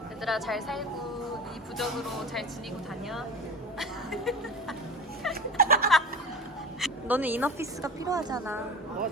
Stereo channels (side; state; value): both; normal; correlation 0.34